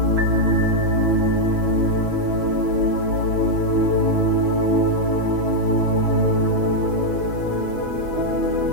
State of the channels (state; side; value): late; left; 6.2 ms